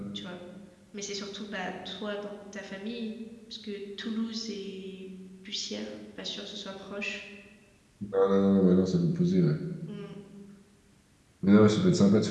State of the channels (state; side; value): identical; both; correlation 1.00